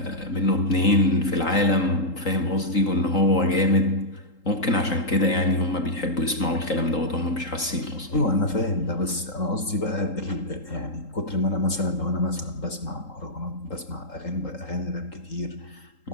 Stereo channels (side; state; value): right; late; 3.8 ms